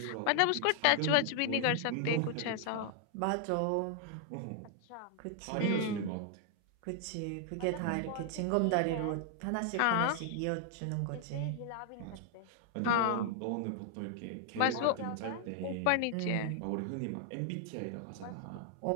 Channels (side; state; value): both; different; correlation 0.00